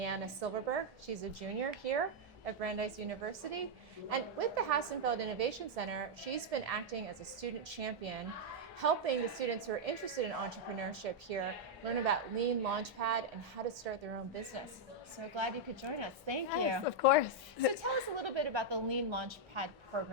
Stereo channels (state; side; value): normal; both; correlation -0.02